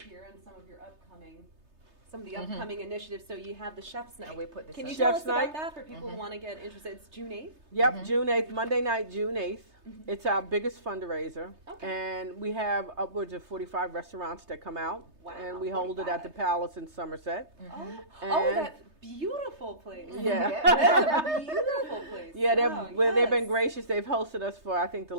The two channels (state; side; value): late; left; 3.3 ms